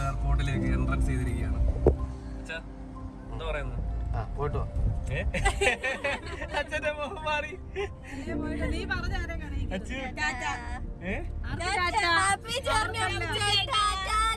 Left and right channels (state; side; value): identical; both; correlation 1.00